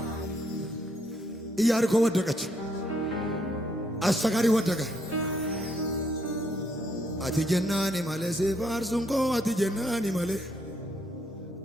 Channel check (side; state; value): both; normal; correlation 0.73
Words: ኢያሪኮ ወደቀች። አሰጋሪ ወደቀ። አትጀናኒ ማለ ሲፋርሱንኮ አትጀናኒ